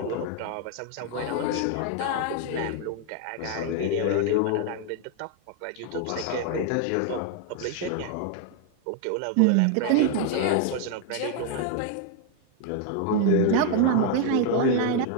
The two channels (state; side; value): different; both; correlation 0.00